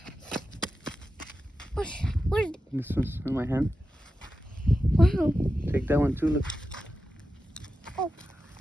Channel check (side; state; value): both; normal; correlation 0.92